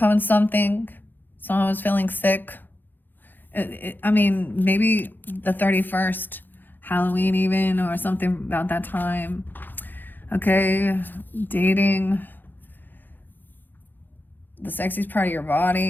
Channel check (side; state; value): right; late; 0.090 ms